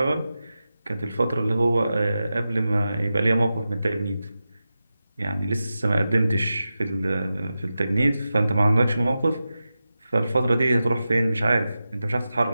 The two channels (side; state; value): both; inverted; correlation -0.92